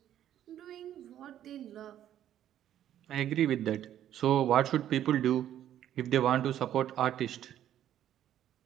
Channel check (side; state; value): left; quieter; 11.3 dB